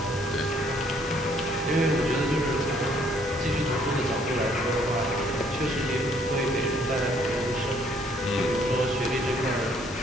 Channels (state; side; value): normal; both; correlation 0.64